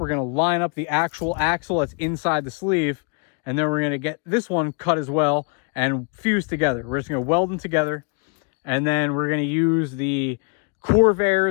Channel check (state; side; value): quieter; right; 38.2 dB